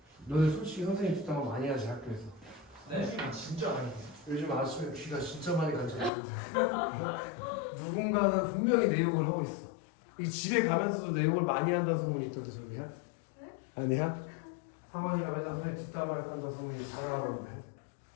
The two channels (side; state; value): right; drops out; at 6.1 s